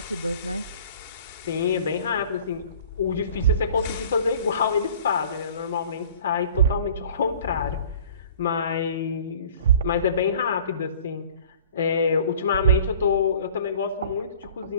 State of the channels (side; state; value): both; inverted; correlation -0.48